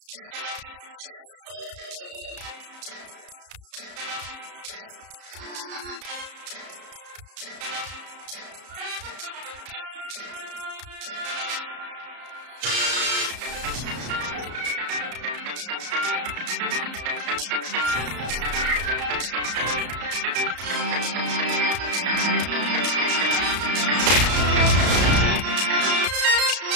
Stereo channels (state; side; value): late; left; 34 ms